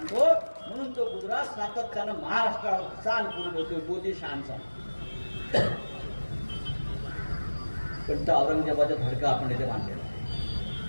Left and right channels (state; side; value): inverted; both; correlation -1.00